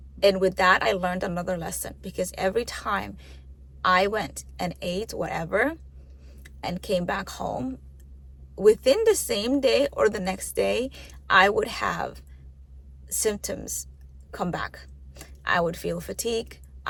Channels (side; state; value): both; identical; correlation 1.00